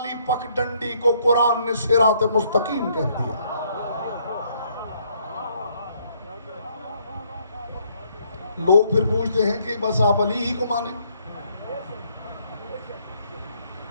پک ڈنڈی کو قرآن نے صراط مستقیم کہہ دیا. لوگ پھر پوچھتے ہیں کہ بس آپ علی ہی کو مانیں.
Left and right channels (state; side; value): inverted; both; correlation -0.68